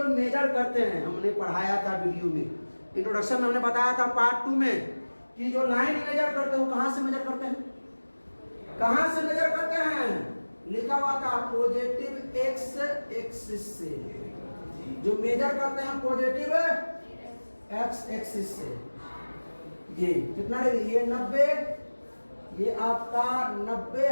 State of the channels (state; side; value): inverted; both; correlation -1.00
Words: मेजर करते हैं, हमने पढ़ाया था वीडियो में, इंट्रोडक्शन में हमने बताया था पार्ट 2 में कि जो लाइन मेजर करते हैं वो कहाँ से मेजर करते हैं? कहाँ से मेजर करते हैं? लिखा हुआ था पॉजिटिव एक्स एक्सिस से। जो मेजर करते हैं पॉजिटिव एक्स एक्सिस से। ये कितना डिग्री? ये 90, ये आपका 90